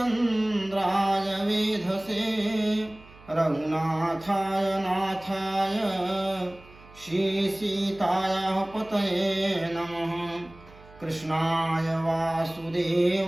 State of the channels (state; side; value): noise; right; hum, 22 dB below the sound